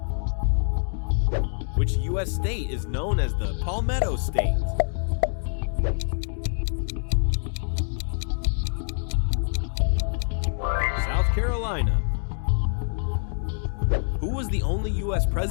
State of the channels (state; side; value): silent; right; digital silence